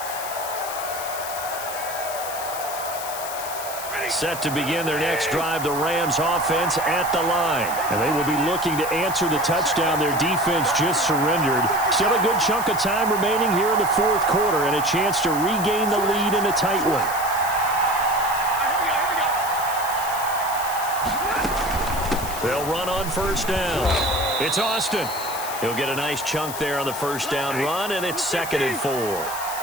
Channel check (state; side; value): noise; left; hiss, 9 dB below the sound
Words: Set to begin their next drive, the Rams offense at the line. And they will be looking to answer the touchdown their defense just surrendered. Still a good chunk of time remaining here in the fourth quarter and a chance to regain the lead in a tight one. They'll run on first down. It's Austin. He'll get a nice chunk there on the first down run, and it's 2nd and 4.